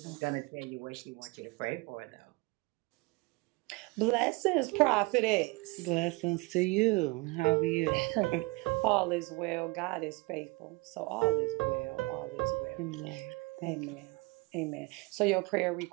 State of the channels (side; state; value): left; quieter; 25.3 dB